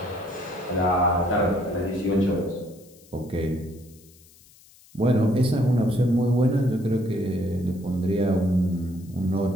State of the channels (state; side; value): noise; left; hiss, 26 dB below the sound